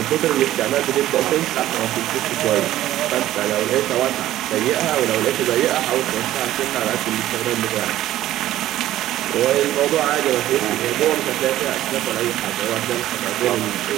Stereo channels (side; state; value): left; quieter; 13.9 dB